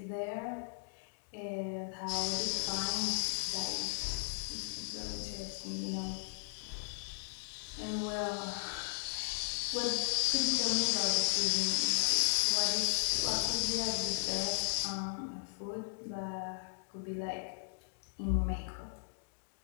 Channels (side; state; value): right; silent; digital silence